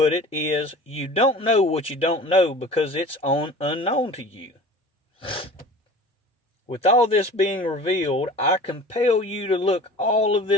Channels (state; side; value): normal; both; correlation 0.41